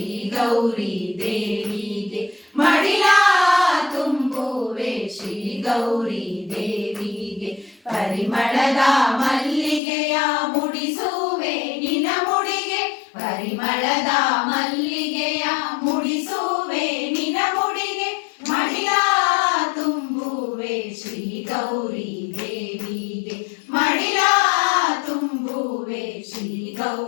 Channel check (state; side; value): drops out; right; at 9.8 s